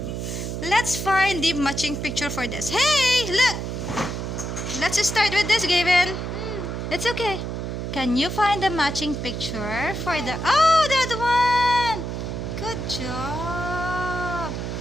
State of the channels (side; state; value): right; noise; hum, 4 dB below the sound